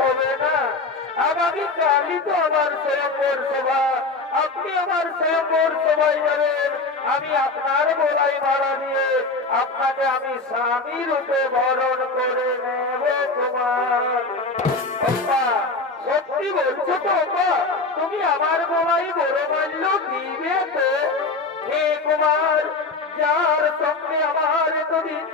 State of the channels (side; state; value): right; quieter; 3.6 dB